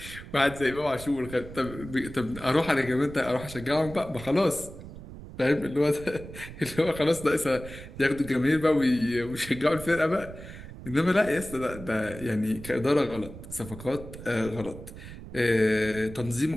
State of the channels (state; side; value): noise; right; rumble, 13 dB below the sound